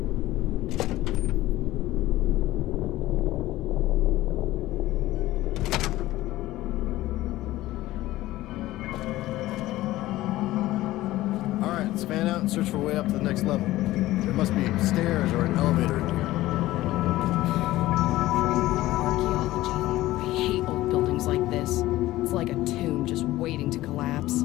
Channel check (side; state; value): right; quieter; 16.5 dB